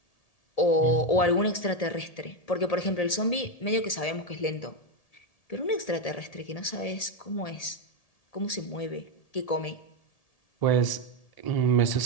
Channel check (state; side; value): late; right; 1.7 ms